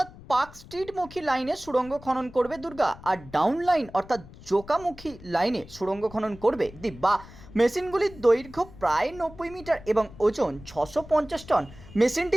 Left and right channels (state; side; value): noise; left; rumble, 19 dB below the sound